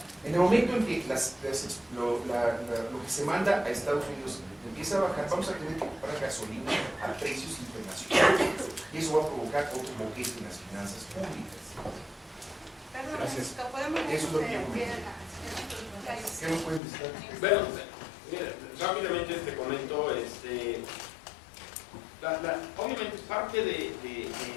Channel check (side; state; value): right; drops out; at 16.8 s